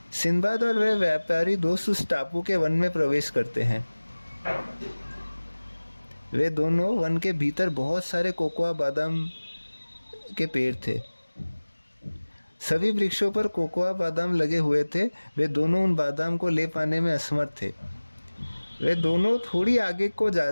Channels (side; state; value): both; inverted; correlation -1.00